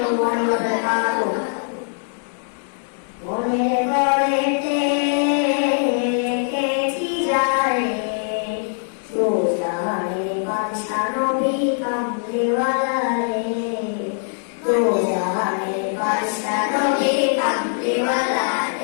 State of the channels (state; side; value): silent; right; digital silence